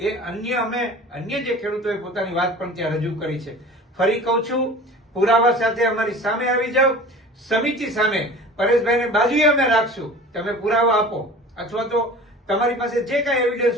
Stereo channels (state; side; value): normal; both; correlation 0.41